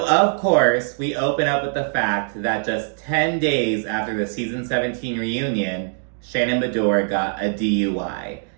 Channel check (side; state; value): left; silent; digital silence